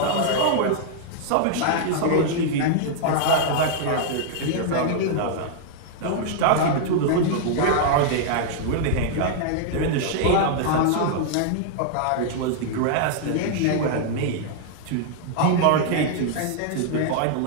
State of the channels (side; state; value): both; different; correlation -0.01